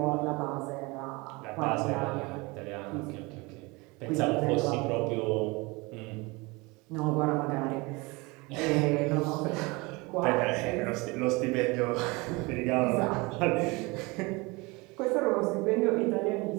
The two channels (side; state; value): left; quieter; 25.2 dB